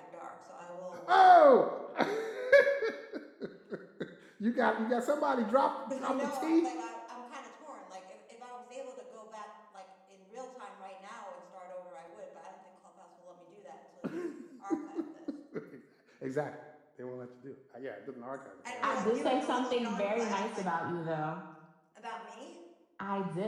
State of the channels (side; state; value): both; identical; correlation 1.00